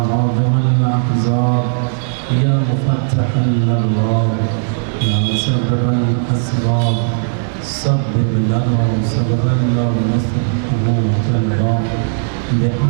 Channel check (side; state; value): left; silent; digital silence